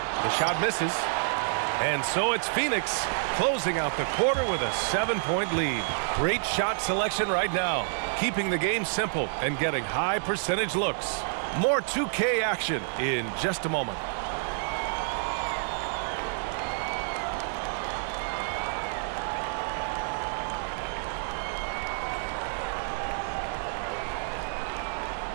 shot misses. And so it's Phoenix closing out the quarter with a 7-point lead. Great shot selection right now, keeping the game simple and getting high percentage looks. More 2K action in just a moment.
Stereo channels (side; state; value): left; silent; digital silence